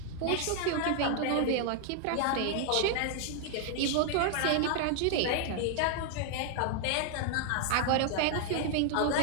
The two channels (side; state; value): both; different; correlation 0.00